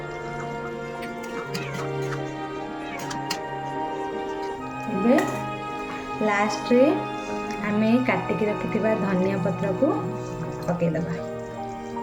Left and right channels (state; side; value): identical; both; correlation 1.00